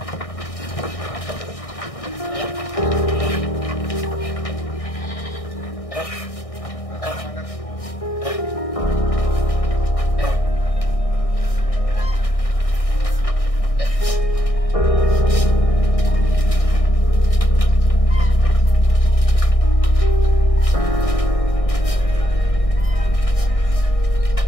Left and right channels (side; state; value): right; late; 1.6 ms